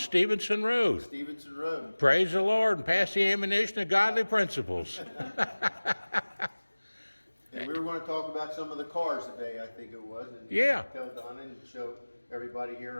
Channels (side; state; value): both; inverted; correlation -1.00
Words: Road. Stevenson Road. Praise the Lord and pass the ammunition of godly principles. And we were going to talk about some of the cars today, I think it was. And Yeah. Tell Donna and show everybody